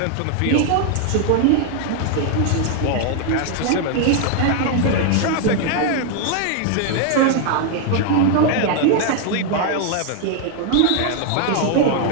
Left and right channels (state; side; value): different; both; correlation 0.00